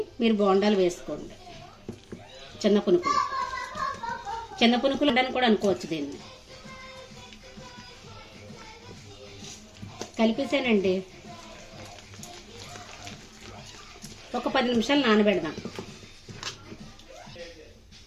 మీరు బోండాలు వేసుకోండి. చిన్న పునుకులు అని కూడా అనుకోవచ్చు. దీన్ని కలిపేసానండి. ఒక 10 నిమిషాలు నానబెడదాం.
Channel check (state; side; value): identical; both; correlation 1.00